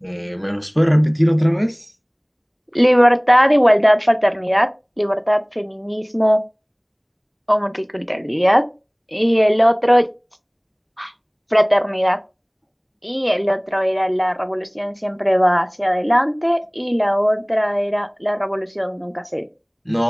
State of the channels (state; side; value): identical; both; correlation 1.00